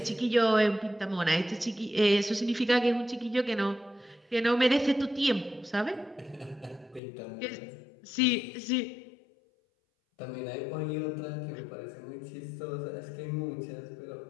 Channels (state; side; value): drops out; right; at 7.0 s